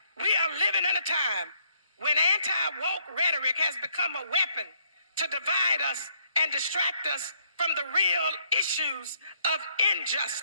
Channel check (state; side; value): inverted; both; correlation -0.69